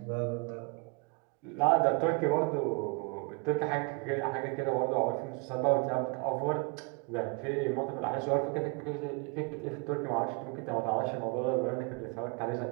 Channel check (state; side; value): quieter; left; 32.5 dB